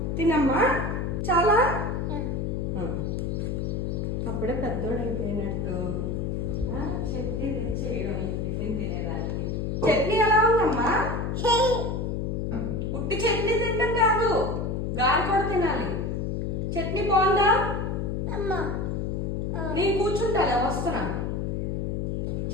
తినమ్మా చాలా అప్పుడే పెద్దోడు అయిపోయినట్టు చట్నీ తెచ్చేయడం టిఫిన్ తినేదానికి. చట్నీ ఎలా ఉందమ్మా? ఉట్టి చట్నీ తింటాం కాదు, గాలి కూడా తినాలి. చట్నీ బాగుందా? నేను కూర్చుంటా వస్తున్నా.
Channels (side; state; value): left; noise; hum, 1 dB below the sound